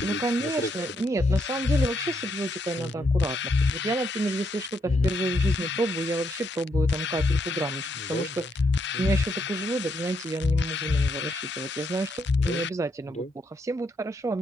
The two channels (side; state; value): both; normal; correlation 0.76